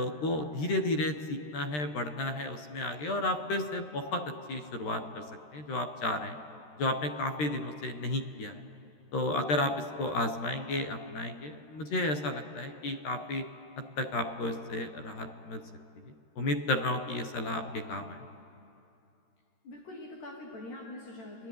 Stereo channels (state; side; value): late; right; 13 ms